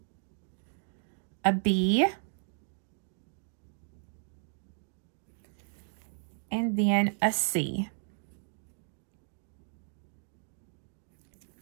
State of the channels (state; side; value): silent; left; digital silence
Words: A B, and then a C.